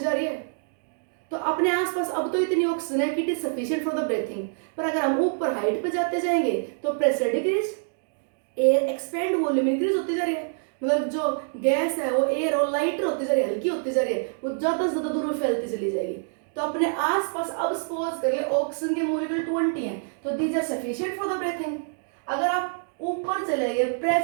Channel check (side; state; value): left; silent; digital silence